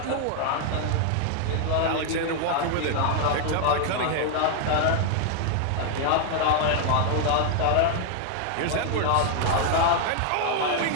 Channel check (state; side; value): different; both; correlation 0.00